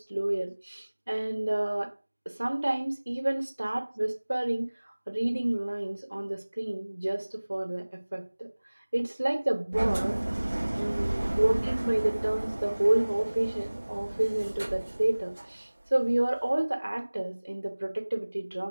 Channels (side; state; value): both; inverted; correlation -1.00